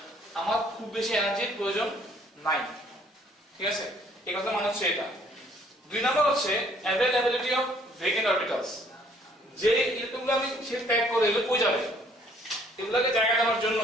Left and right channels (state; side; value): normal; both; correlation 0.61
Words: আমার খুব বেশি এনার্জির প্রয়োজন 9 ঠিক আছে এই কথা মানে হচ্ছে এটা 2 নাম্বার হচ্ছে availability of vacant orbitals যে ইলেকট্রনগুলো আমি সে প্যাক করে এগুলো কই যাবে এগুলোকে জায়গা দেওয়ার জন্য